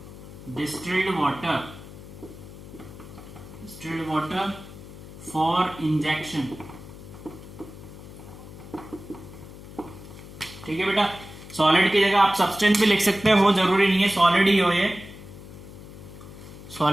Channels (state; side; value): noise; left; hum, 16 dB below the sound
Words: distilled water for injection, ठीक है बेटा। सॉलिड की जगह आप सब्सटेंस भी लिख सकते हो, जरूरी नहीं है सॉलिड ही हो ये।